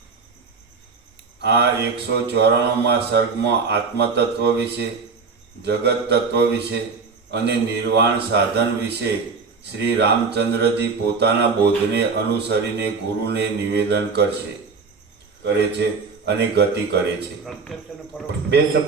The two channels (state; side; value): quieter; left; 4.9 dB